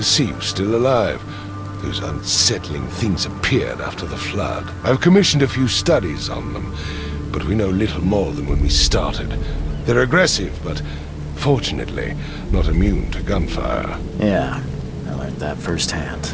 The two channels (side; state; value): both; identical; correlation 1.00